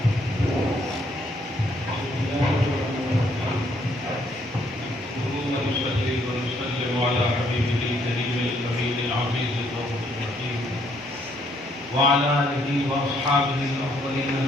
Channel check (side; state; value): both; normal; correlation 0.69